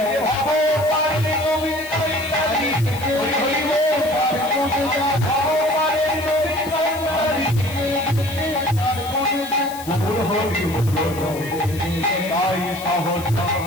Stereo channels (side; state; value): left; noise; hiss, 15 dB below the sound